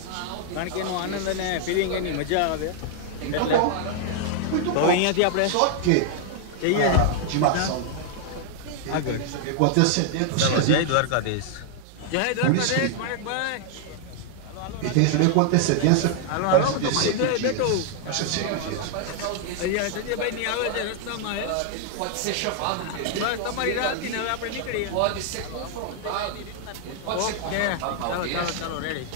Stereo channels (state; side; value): different; both; correlation 0.00